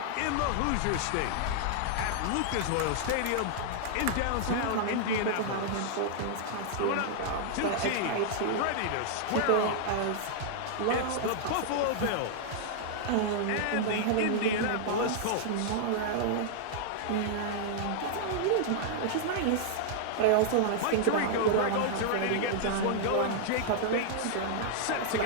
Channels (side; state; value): both; different; correlation -0.01